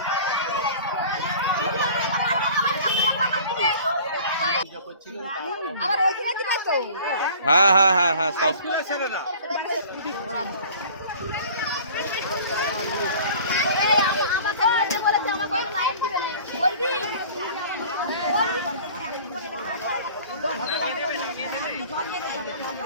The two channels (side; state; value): both; inverted; correlation -0.45